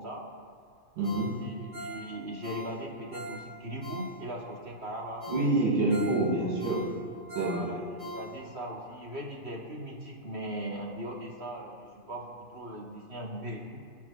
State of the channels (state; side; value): late; left; 2.5 ms